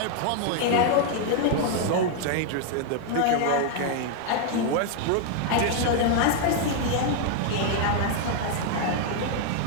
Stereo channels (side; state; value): both; different; correlation 0.00